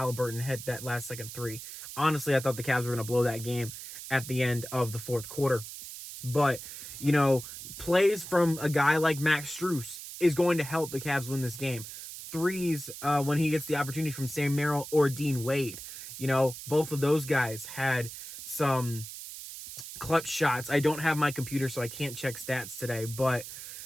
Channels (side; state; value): right; noise; hiss, 11 dB below the sound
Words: hit that last second 3. Honestly, I thought the Cavs were going to blow that game at the end of the fourth quarter. But, you know, plays from a guy like Max Strus is going to help the Cavs win this game. Threes, when he gets the opportunity from Sam Merrill or Dean Wade. You know, both of those guys had some clutch shots. I don't have my computer, so I can't check stats today, but